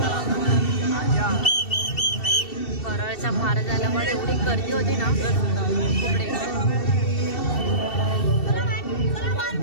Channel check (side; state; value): right; late; 2.7 ms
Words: परळचा महाराजाला पण एवढी गर्दी होती ना, खूप